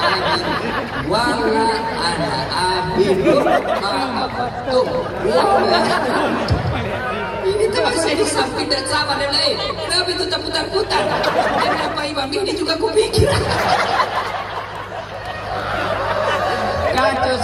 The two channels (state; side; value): identical; both; correlation 1.00